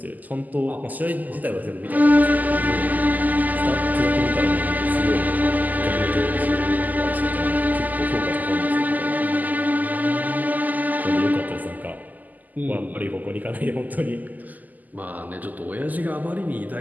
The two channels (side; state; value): left; late; 0.082 ms